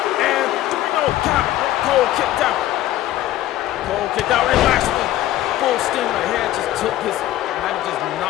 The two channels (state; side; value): quieter; right; 14.2 dB